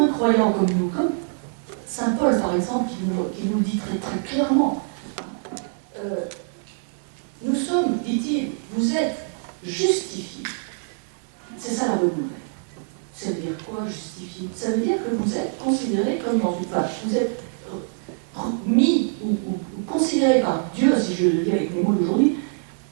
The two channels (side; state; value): left; silent; 62 dB below the other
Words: croyant comme nous, comme Saint Paul par exemple, qui nous dit très, très clairement, nous sommes, dit-il, vous êtes justifiés. C'est ça la bonne nouvelle. Ça veut dire quoi, justifié? Ça veut dire que vous êtes considéré comme dans une page. Vous êtes mis ou considéré par Dieu, si je le dis avec les mots d'aujourd'hui,